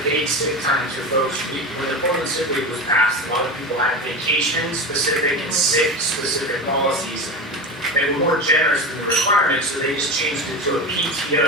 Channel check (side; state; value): both; normal; correlation 0.24